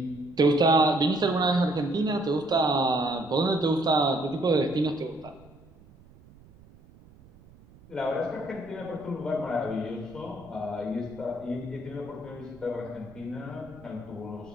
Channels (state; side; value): noise; right; rumble, 24 dB below the sound